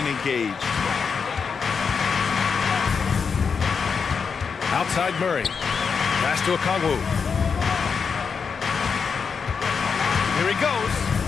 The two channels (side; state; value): right; quieter; 5.8 dB